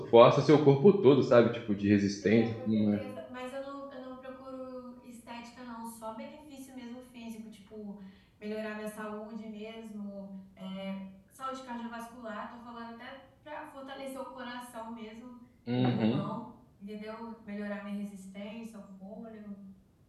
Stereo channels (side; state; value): both; identical; correlation 1.00